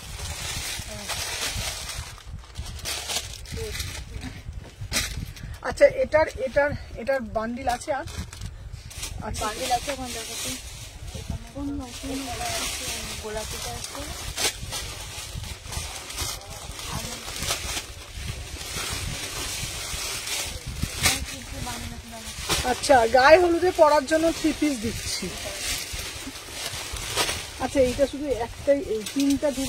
আচ্ছা এটার এটার এটার বান্ডিল আছে? আর আচ্ছা বান্ডিল আছে ওখানে দেখাতে। কোন মাসে গোলাপিটা আছে। আচ্ছা গায়ে হলুদে পরার জন্য 3 পিস দিচ্ছি। আচ্ছা এইটা শুধু একটাই, এই 3টা 2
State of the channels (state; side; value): identical; both; correlation 1.00